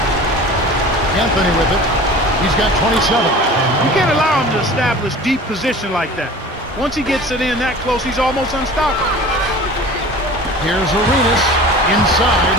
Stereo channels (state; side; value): normal; both; correlation 0.40